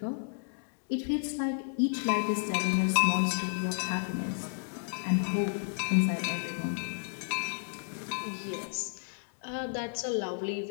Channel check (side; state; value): right; silent; digital silence